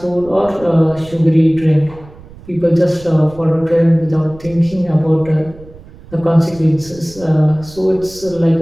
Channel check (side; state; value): right; noise; rumble, 20 dB below the sound